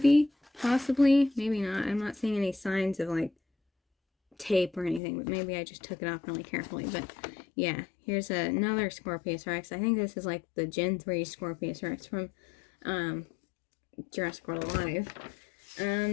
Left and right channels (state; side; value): drops out; right; at 5.0 s